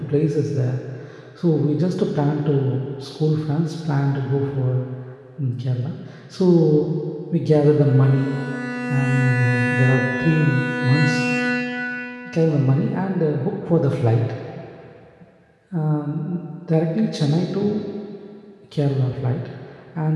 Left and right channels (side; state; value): both; identical; correlation 1.00